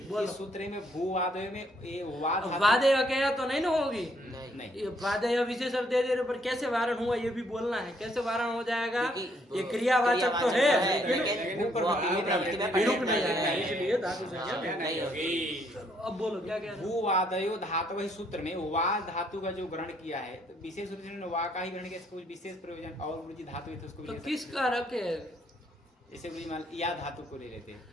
बोलो। सूत्र में भूवादय में ये वादय कह तो नहीं ना होगी। नहीं, वादय विशेषण दे दे पर कैसे वारण हुआ ये भी बोलना है। कैसे वारण हो जाएगा? ये क्रियावाचक तो है लेकिन हिरुक नहीं आएगा, इसलिए धातु संज्ञा नहीं होगी। अब बोलो क्या कह रहे हो? भूवादयो धातु वही सूत्र में वा धातु का जो ग्रहण किया है, तो विशेष रूप से वा का ही ग्रहण किया, इसको विशेष प्रयोजन और गुरुजी धातु है तो उसको तो विशेष- किसका रखे? जैसे गुरुजी मान या धातु को ले लेते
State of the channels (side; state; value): both; normal; correlation 0.69